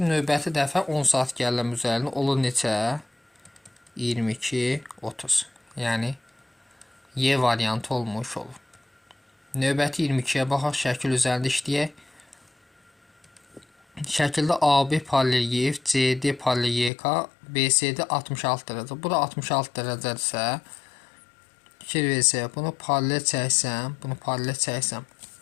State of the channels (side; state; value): right; drops out; at 16.9 s